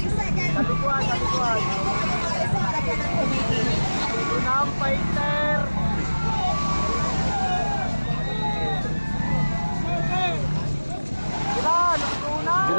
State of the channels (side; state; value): both; inverted; correlation -1.00